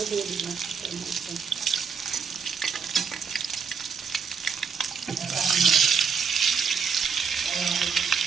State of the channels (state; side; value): quieter; left; 6.2 dB